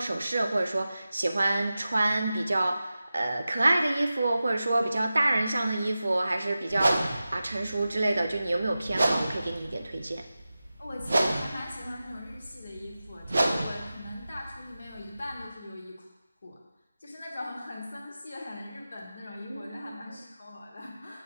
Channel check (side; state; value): both; inverted; correlation -0.94